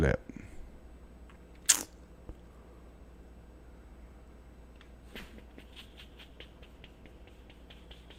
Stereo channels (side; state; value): both; identical; correlation 1.00